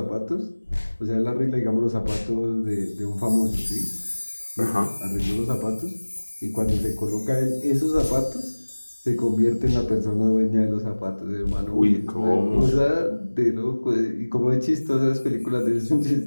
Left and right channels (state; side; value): inverted; both; correlation -1.00